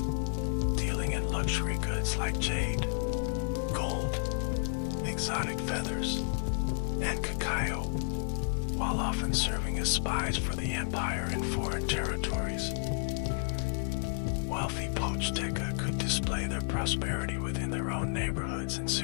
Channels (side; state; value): right; silent; digital silence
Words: dealing in luxury goods like jade, gold, exotic feathers, and cacao, while often serving as spies for the empire in foreign territories. Wealthy Pochteca could display their prosperity within their own neighborhoods and